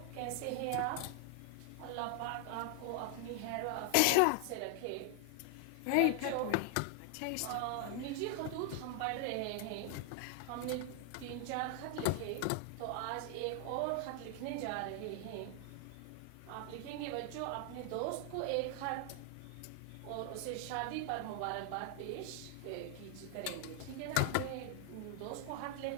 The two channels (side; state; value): both; different; correlation 0.00